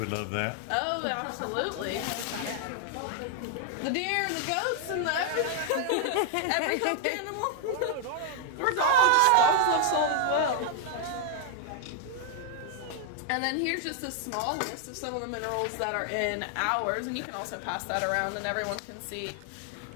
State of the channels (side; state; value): both; different; correlation 0.00